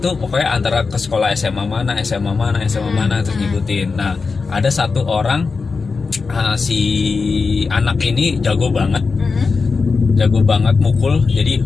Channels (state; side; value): quieter; right; 4.6 dB